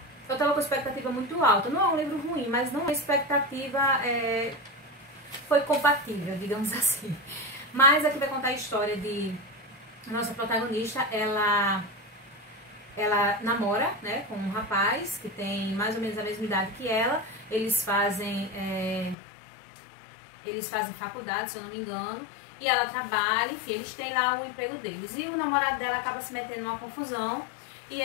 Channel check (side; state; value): right; drops out; at 19.2 s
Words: estava com expectativa muito alta. Não é um livro ruim, mas não a expectativa foi compatível, digamos assim. Mas aqui vai contar a história de a nossa protagonista. Ela namora, né, com um rapaz que tem mais ou menos a mesma idade que ela. Eles fazem faculdade, se eu não me engano. E ela trabalha, enfim, eles têm lá o emprego deles. E o namorado dela acaba se metendo numa confusão. E